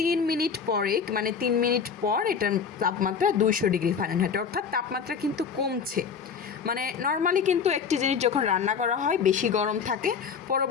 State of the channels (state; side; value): quieter; right; 6.4 dB